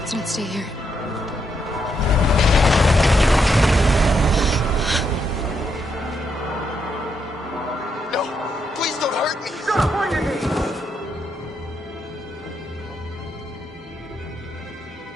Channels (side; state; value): both; normal; correlation 0.78